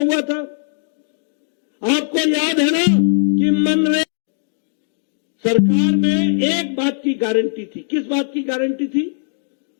आपको याद है ना कि मनरेगा सरकार में एक बात की गारंटी थी। किस बात की गारंटी थी?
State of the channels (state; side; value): silent; right; digital silence